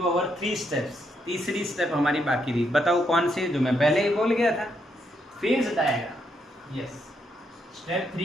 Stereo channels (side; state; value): both; normal; correlation 0.77